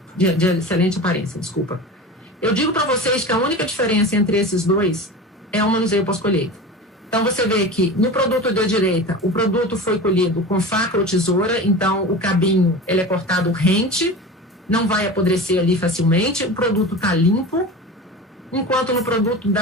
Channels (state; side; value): normal; both; correlation 0.31